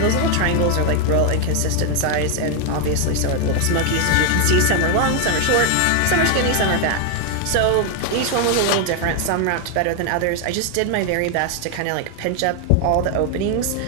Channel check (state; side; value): different; both; correlation 0.01